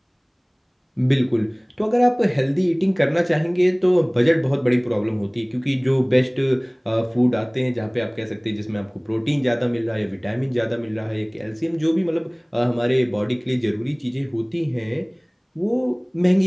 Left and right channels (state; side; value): identical; both; correlation 1.00